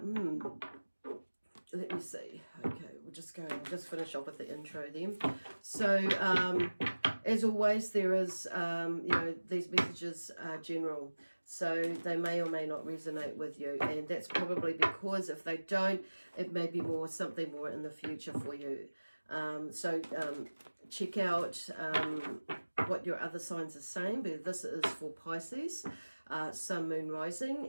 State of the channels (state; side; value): inverted; both; correlation -1.00